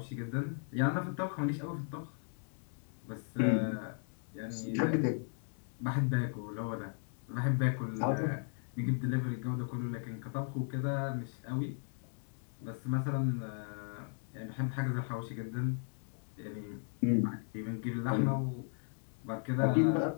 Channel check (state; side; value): silent; right; 54 dB below the other